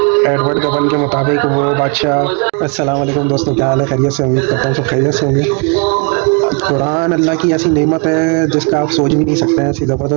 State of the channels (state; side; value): quieter; left; 35.1 dB